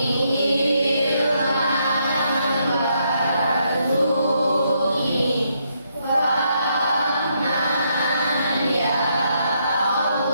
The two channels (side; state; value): both; inverted; correlation -0.76